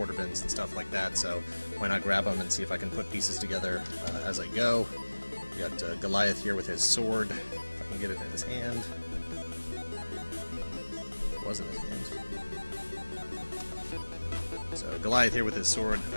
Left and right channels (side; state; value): both; inverted; correlation -1.00